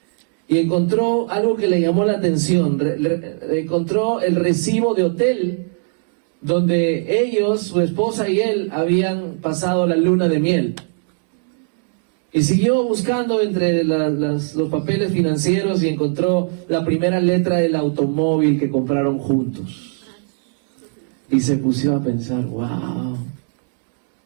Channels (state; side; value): silent; left; digital silence